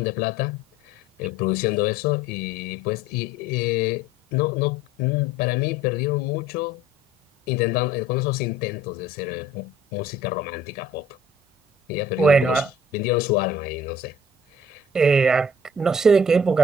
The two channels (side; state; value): both; normal; correlation 0.51